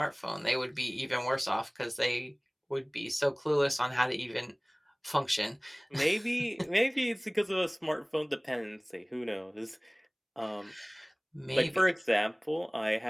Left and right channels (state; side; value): identical; both; correlation 1.00